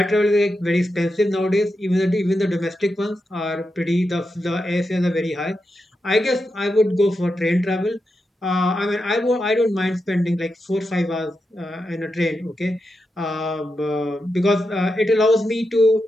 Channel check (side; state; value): both; normal; correlation 0.87